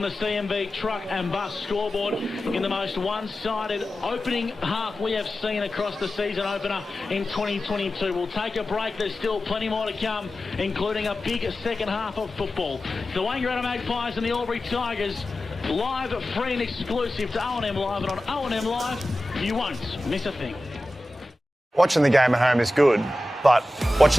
the CMB truck and bus scoreboard in the most one-sided opening half we have seen across the season opener in 2022. We'll take a break. There's still plenty more to come, including a big second half of football. The Wangaratta Magpies and the Albury Tigers live, free and exclusive to O&M Live, and on O&M Live, you won't miss a thing. Watching the game at home is good, but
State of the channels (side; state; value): both; normal; correlation 0.94